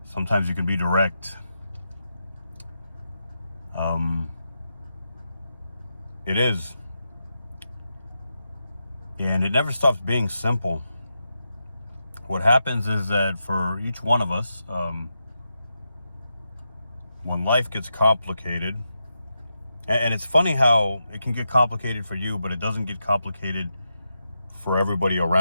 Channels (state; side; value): inverted; both; correlation -0.87